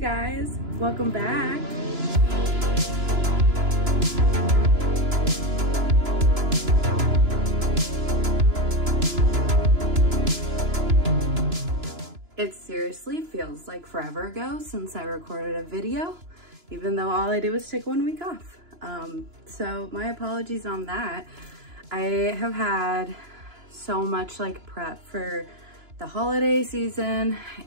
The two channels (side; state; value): left; late; 2.9 ms